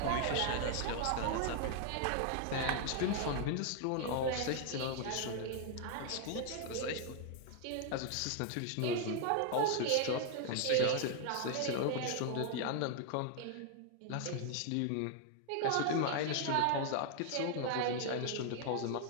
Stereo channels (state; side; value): different; both; correlation 0.00